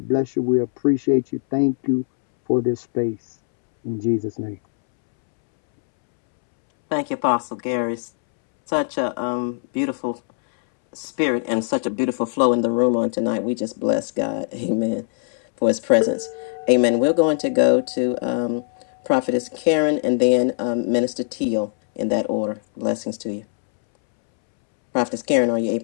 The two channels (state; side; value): silent; right; 65 dB below the other